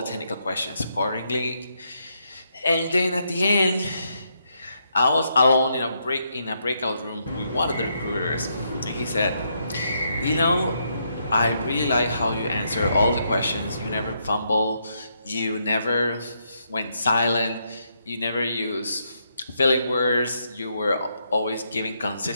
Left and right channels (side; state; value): both; inverted; correlation -0.78